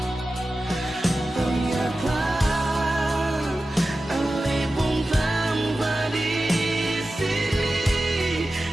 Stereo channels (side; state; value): both; normal; correlation 0.94